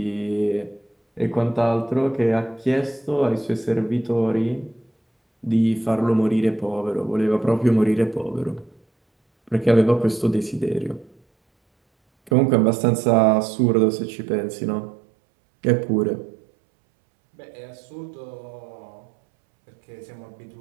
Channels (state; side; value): drops out; left; at 12.3 s